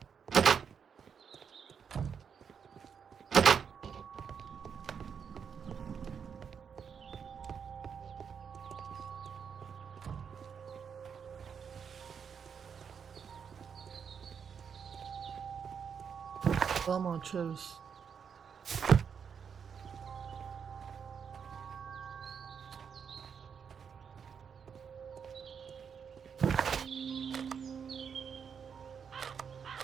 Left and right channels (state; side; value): quieter; left; 6.9 dB